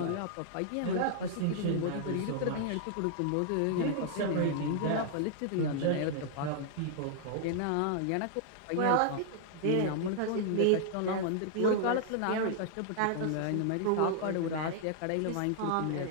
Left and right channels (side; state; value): both; different; correlation -0.01